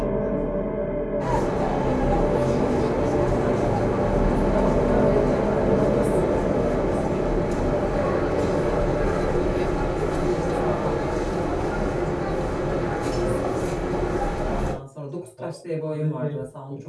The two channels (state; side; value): identical; both; correlation 1.00